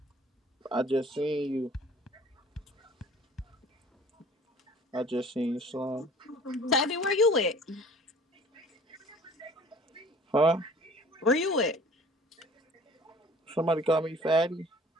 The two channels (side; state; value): both; normal; correlation 0.49